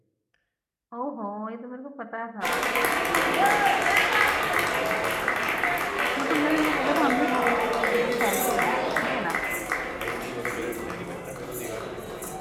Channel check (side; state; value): both; identical; correlation 1.00